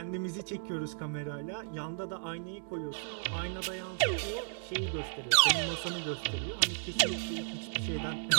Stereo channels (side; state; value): left; silent; digital silence